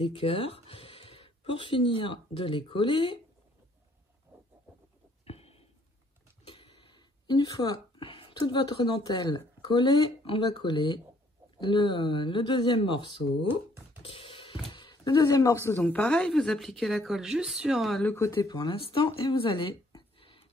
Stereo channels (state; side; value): normal; both; correlation 0.64